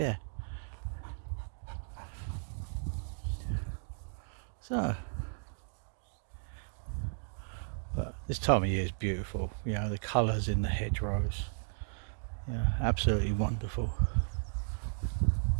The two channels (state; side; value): silent; left; digital silence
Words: So, but this time of year is beautiful. You know, the colours in the hedgerows. Yeah, absolutely wonderful.